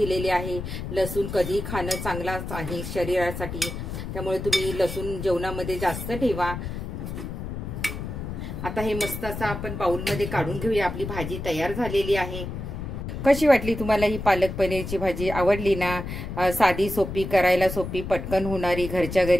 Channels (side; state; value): left; noise; rumble, 6 dB below the sound